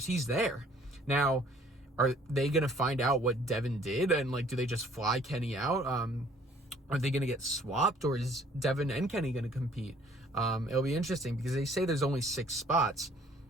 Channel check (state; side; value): normal; both; correlation 0.58